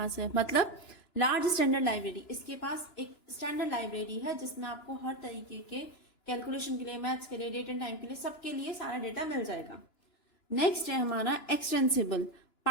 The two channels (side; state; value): right; late; 2.9 ms